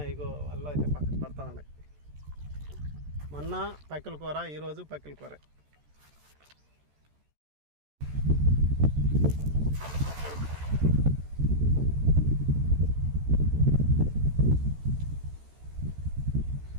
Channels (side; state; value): left; late; 14 ms